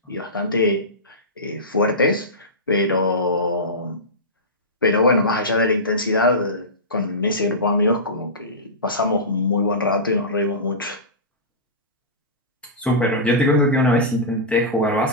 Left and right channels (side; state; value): both; normal; correlation -0.17